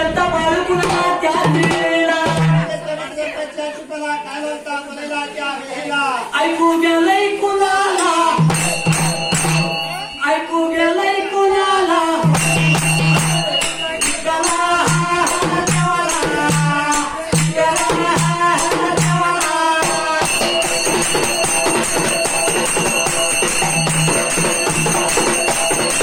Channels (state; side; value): identical; both; correlation 1.00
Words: बाळू कुणाला त्या दिलेला ऐकू गेलंय कुणाला ऐकू गेलंय कुणाला